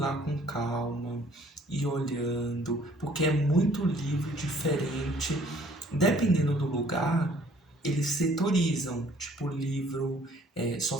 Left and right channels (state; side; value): normal; both; correlation 0.59